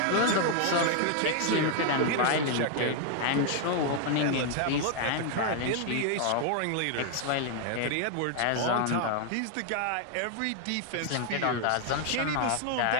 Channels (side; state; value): both; different; correlation 0.00